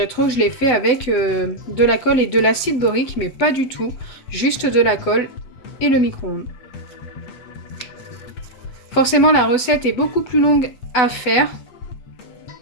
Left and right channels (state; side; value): late; right; 7.9 ms